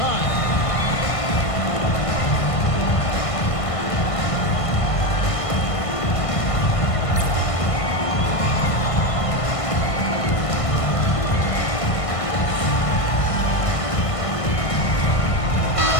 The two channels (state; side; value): late; right; 1.5 ms